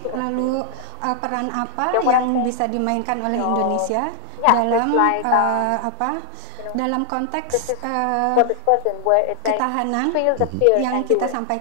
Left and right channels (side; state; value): both; different; correlation 0.00